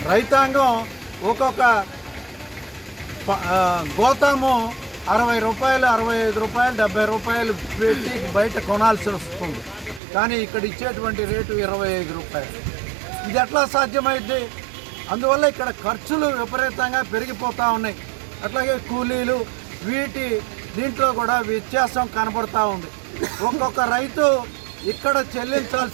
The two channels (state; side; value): drops out; left; at 10.0 s